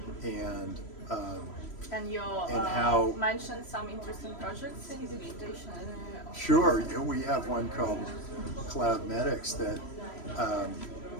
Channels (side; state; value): right; late; 3.1 ms